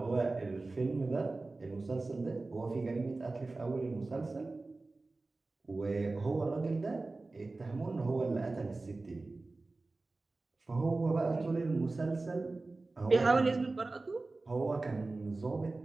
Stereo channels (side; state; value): left; quieter; 3.4 dB